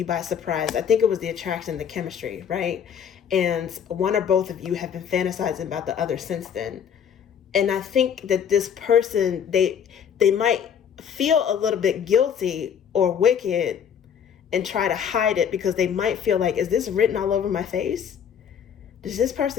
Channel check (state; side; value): quieter; right; 8.0 dB